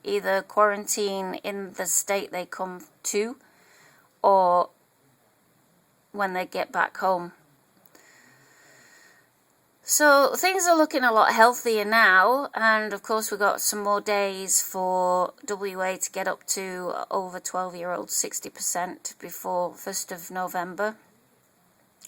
Either quarantine in the state they come to, or when they get back home. So things are looking a lot healthier now, and of course we've got some more days for WA to get up to over 12-year-olds 60% before 1st of November.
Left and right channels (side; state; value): both; identical; correlation 1.00